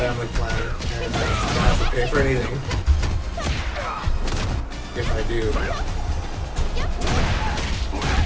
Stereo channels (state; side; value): identical; both; correlation 1.00